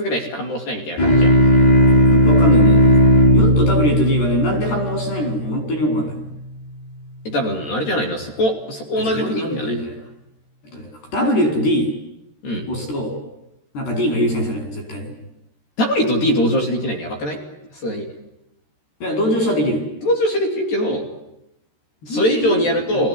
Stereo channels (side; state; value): right; late; 13 ms